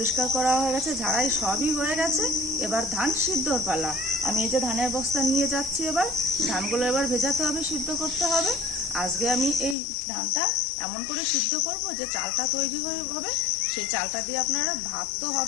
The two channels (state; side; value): drops out; right; at 9.8 s